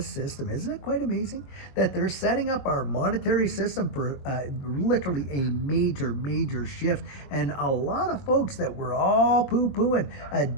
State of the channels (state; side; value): late; right; 22 ms